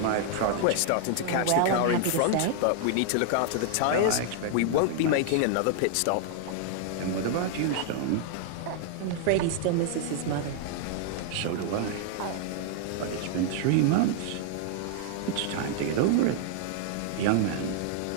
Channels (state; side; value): different; both; correlation 0.00